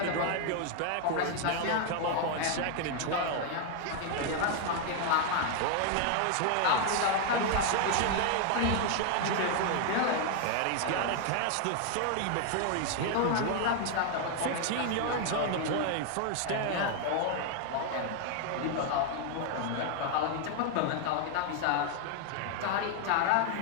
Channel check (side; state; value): both; different; correlation 0.01